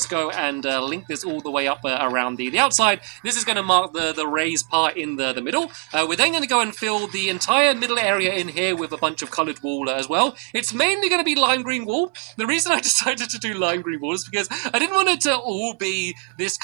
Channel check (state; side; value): quieter; left; 36.8 dB